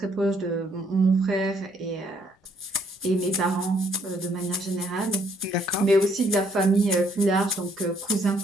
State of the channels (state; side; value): normal; both; correlation 0.67